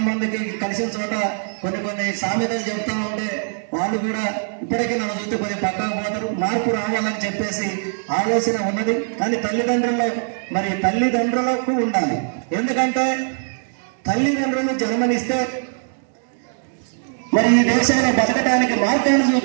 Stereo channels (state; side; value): silent; left; 65 dB below the other